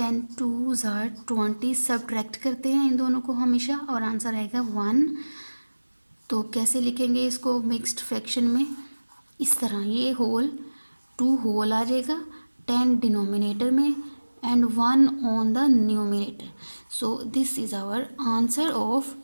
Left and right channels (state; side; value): inverted; both; correlation -1.00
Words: 2s are 20. Subtract करते हैं इन दोनों को हमेशा और आंसर आएगा 1. तो कैसे लिखेंगे इसको मिक्स्ड फ्रैक्शन में? इस तरह, ये होल 2 होल आ जाएगा, 10 डिनोमिनेटर में and 1 on the numerator. So this is our answer of